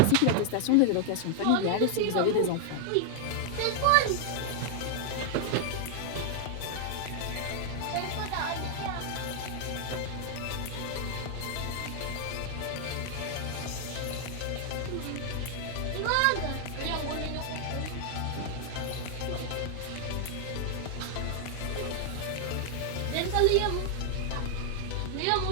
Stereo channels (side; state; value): both; different; correlation 0.00